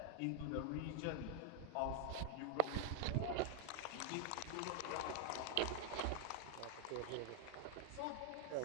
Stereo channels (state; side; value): different; both; correlation 0.01